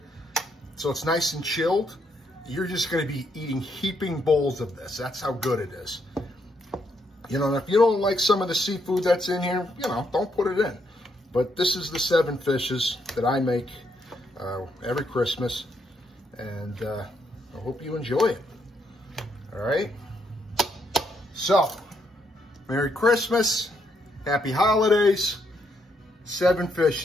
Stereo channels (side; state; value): both; normal; correlation 0.76